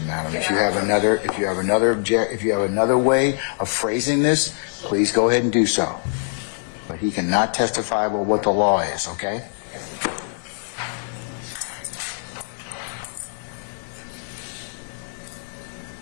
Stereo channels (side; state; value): right; silent; 63 dB below the other